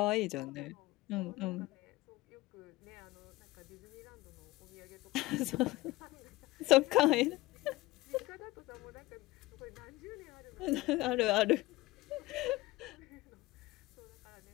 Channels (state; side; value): quieter; right; 19.4 dB